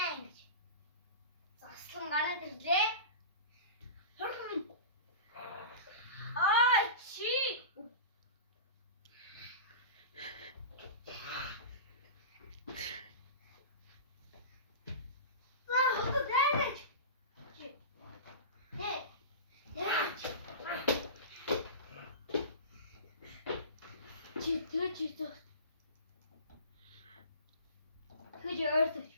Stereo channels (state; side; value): inverted; both; correlation -0.32